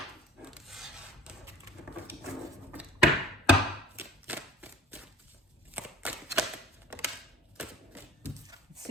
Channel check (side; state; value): both; normal; correlation 0.49